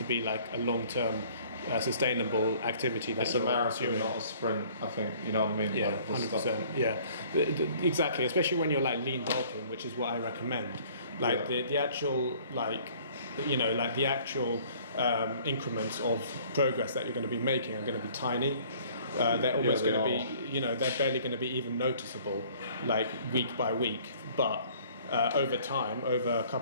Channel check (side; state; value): both; inverted; correlation -0.55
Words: be like a long-term sustainable activity. It's a marathon, not a sprint, I think, you know what I mean? Yeah, 100%. Yeah, exactly, especially when you're like lean bulking, which is what I recommend. Like the actual, like, you know, like the actual increments of progress that you're going to be making are going to be tiny. They're almost going to be, you know, they're barely going to be even noticeable, like week by week. But over time, over a